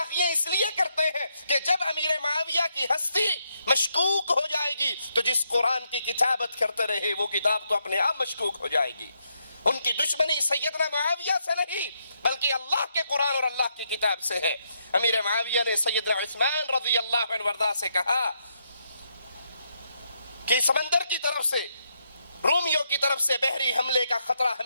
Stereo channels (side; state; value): both; inverted; correlation -0.78